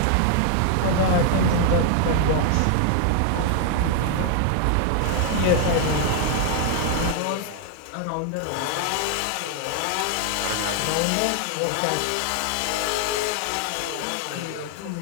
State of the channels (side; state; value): both; different; correlation 0.00